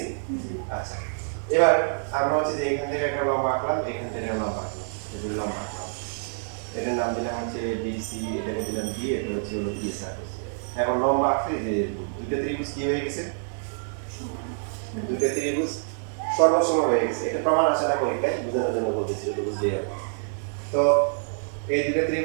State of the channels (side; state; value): left; silent; digital silence